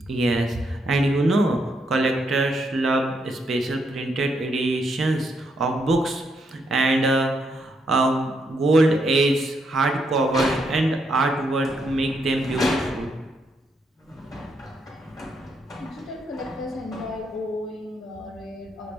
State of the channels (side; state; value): both; normal; correlation 0.77